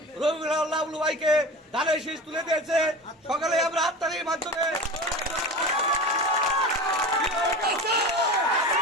রবিউল লাবলু ভাইকে ধানের শীষ তুলে দিয়েছে। সকালে আমরা হাততালির মাধ্যমে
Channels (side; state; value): both; normal; correlation 0.31